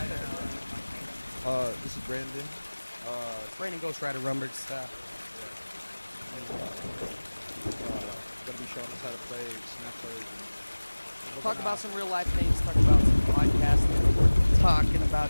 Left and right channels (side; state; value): both; inverted; correlation -1.00